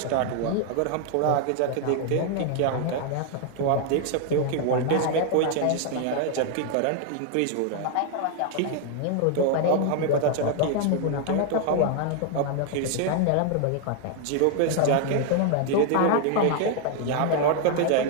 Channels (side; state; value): both; different; correlation 0.00